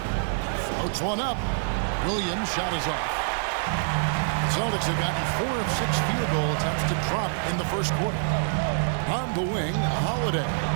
Floats one up. Williams' shot is off. Celtics have gotten 4 of 6 field goal attempts to drop in the first quarter. On the wing, Holiday.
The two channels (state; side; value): silent; left; 61 dB below the other